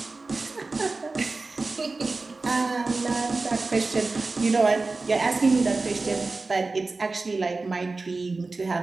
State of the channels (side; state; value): left; quieter; 3.6 dB